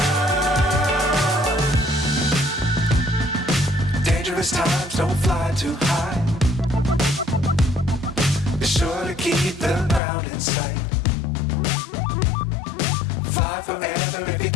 Times don't fly too high. Be sure to keep the ground in sight. Fly forever if you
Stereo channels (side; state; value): right; drops out; at 10.0 s